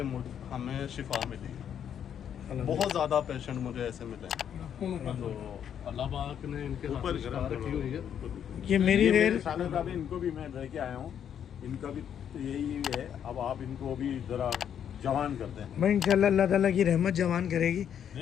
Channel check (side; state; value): right; quieter; 8.9 dB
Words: हमें शिफा मिली है। बहुत ज़्यादा पेशेंट मुझे ऐसे मिले हैं, तो अल्लाह पाक ने इनके ऊपर शिफा रखी हुई है। ये मेरी रेल सालों का भी इनको भी मैं लेके आया हूँ, इनका भी तो यही है। अब आप इनको भी ज़रा जवान करते हैं। मैं इंशाल्लाह अल्लाह ताला की रहमत जवान करेगी।